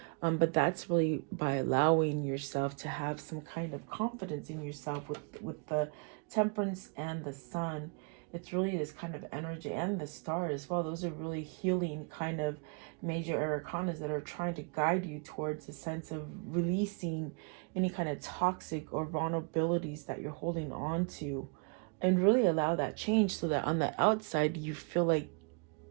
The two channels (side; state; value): left; quieter; 37.2 dB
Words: But that's really by allowing yourself to have some kind of confidence in yourself. With the Temperance and the Sun, it's really this kind of energy, and the Star as well. Those are really healing kind of major arcanas that are trying to guide you towards a sense of releasing any kind of toxic or vulnerabilities that you're holding on to, and really allow that change, so that on the outside you feel